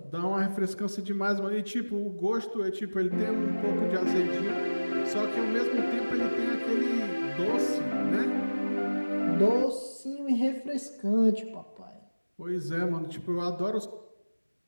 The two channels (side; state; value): both; inverted; correlation -1.00